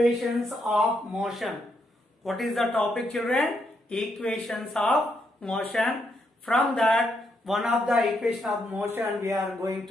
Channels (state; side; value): normal; both; correlation 0.78